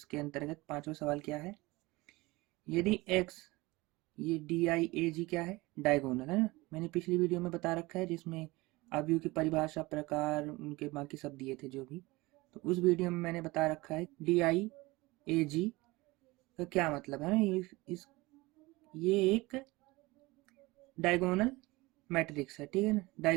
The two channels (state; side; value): quieter; left; 21.8 dB